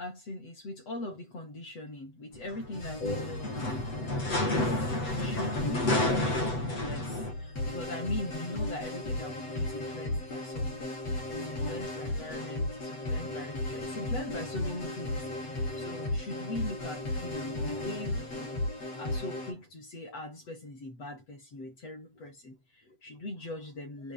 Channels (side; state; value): right; late; 8.0 ms